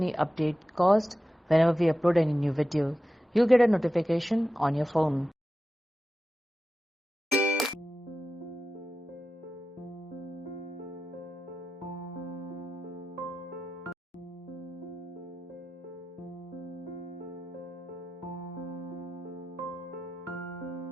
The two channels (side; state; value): both; normal; correlation 0.93